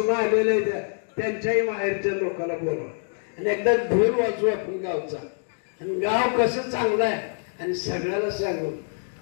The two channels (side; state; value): right; silent; 62 dB below the other